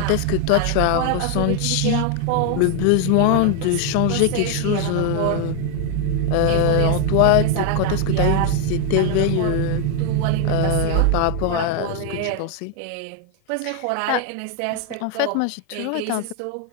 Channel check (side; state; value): both; different; correlation 0.00